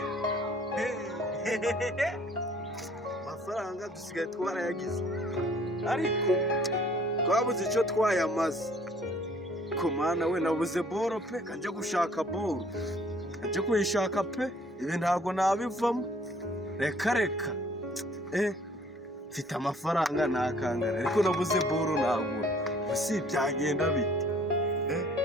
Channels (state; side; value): normal; both; correlation 0.57